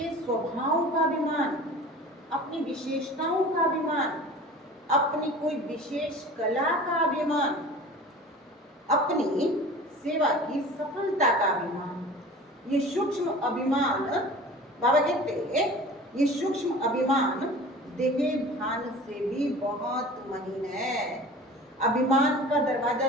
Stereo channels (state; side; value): normal; both; correlation 0.40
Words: स्वभाव का अभिमान, अपनी विशेषताओं का अभिमान, अपनी कोई विशेष कला का अभिमान, अपनी सेवा की सफलता का अभिमान। ये सूक्ष्म अभिमान, बाबा कहते हैं ये सूक्ष्म अभिमान देह भान से भी बहुत महीन है। अभिमान का दरवाजा